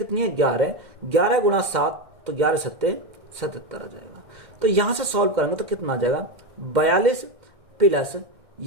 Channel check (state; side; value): late; left; 1.6 ms